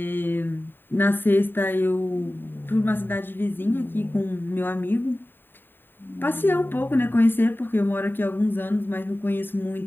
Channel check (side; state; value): right; late; 0.096 ms